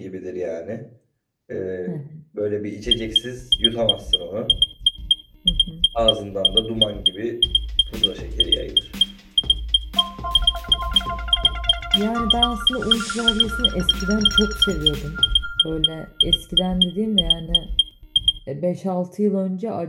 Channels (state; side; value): identical; both; correlation 1.00